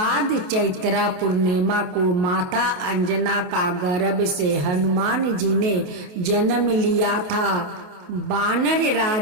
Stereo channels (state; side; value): late; left; 28 ms